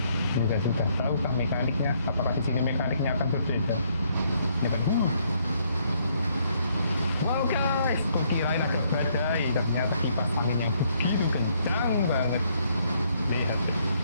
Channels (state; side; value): inverted; both; correlation -0.70